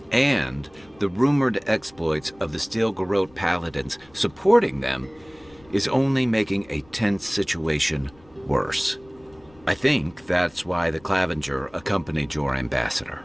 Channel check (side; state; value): left; noise; rumble, 27 dB below the sound